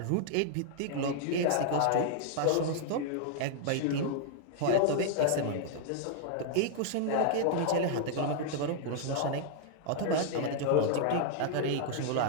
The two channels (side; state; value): both; different; correlation -0.01